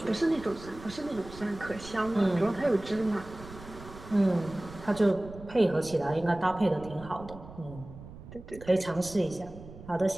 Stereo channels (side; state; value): right; noise; rumble, 16 dB below the sound